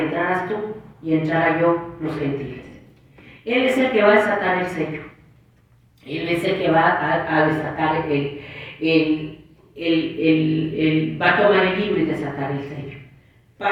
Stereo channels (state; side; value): identical; both; correlation 1.00